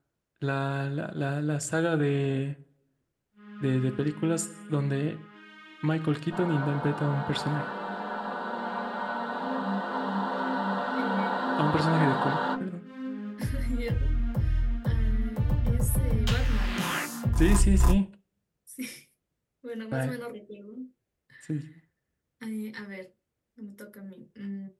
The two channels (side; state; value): both; identical; correlation 1.00